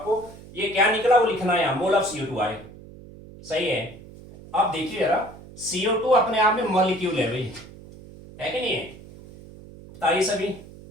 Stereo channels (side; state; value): right; noise; hum, 18 dB below the sound